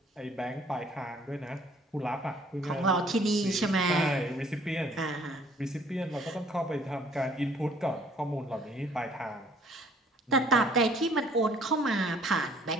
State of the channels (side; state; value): both; normal; correlation 0.59